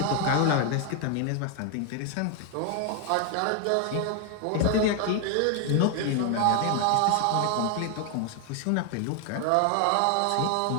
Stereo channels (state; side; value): different; both; correlation 0.00